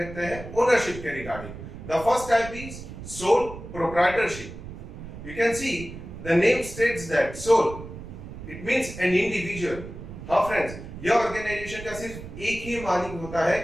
हैं ओनरशिप के regarding. The first type is sole proprietorship. You can see the name states that sole it means an individual. हाँ फ्रेंड्स, यह ऑर्गेनाइजेशन का सिर्फ एक ही मालिक होता है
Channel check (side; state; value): right; noise; rumble, 12 dB below the sound